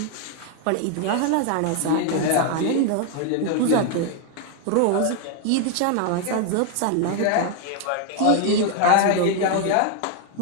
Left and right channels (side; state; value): both; different; correlation 0.01